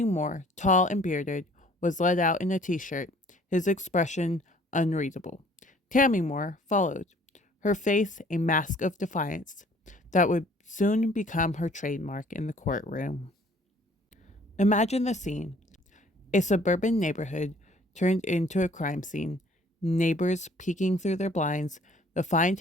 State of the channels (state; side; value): normal; both; correlation 0.56